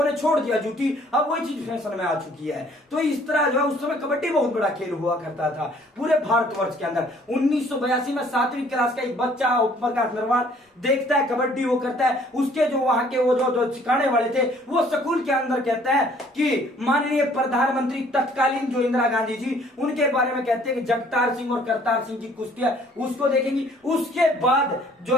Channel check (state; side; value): normal; both; correlation 0.59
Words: ने छोड़ दिया, जूती अब वही चीज फैशन में आ चुकी है। तो इस तरह जो है उस समय कबड्डी बहुत बड़ा खेल हुआ करता था पूरे भारतवर्ष के अंदर। 1982 में 7वीं क्लास का एक बच्चा ओम प्रकाश नरवाल देखता है कबड्डी, वो करता है। उसके जो वहां के वो जो सिखाने वाले थे वो स्कूल के अंदर कहते हैं कि माननीय प्रधानमंत्री तत्कालीन जो इंदिरा गांधी जी, उनके बारे में कहते हैं कि जगतार सिंह और करतार सिंह की कुश्ती है, उसको देखेंगी। उसके बाद जो